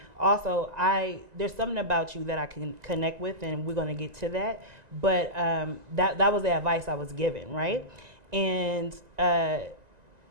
also, there's something about you that I can connect with, and we're going to get to that. But that was the advice I was given, right? And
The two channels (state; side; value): late; left; 1.9 ms